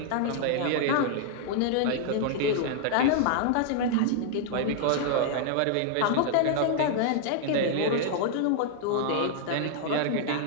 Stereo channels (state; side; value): different; both; correlation -0.01